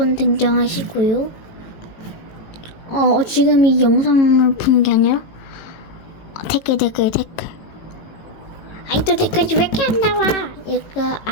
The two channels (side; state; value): right; late; 18 ms